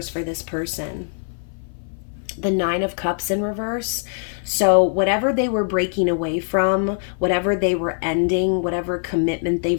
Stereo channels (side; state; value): right; silent; 56 dB below the other